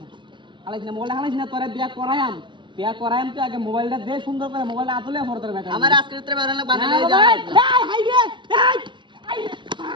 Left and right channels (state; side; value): late; left; 0.23 ms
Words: হালাইছ না মোবাইল হালাইছ না তোরে বিয়া করায়াম তো আগে মোবাইলটা দে সুন্দর করে মোবাইলটা আতলে পরে তোর বেটা আমার আজকের ভিতরে বেহরাই দল বানাই এই যায় হাই রে